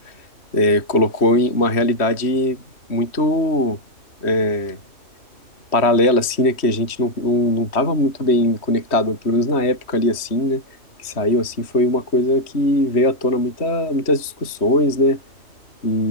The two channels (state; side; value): late; right; 3.1 ms